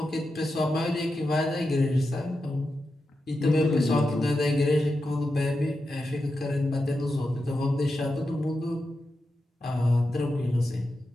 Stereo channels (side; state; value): both; normal; correlation 0.89